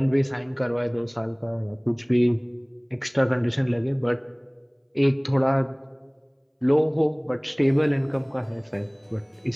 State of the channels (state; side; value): identical; both; correlation 1.00